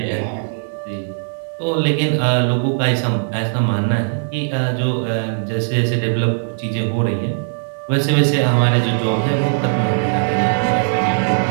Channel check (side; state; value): left; silent; digital silence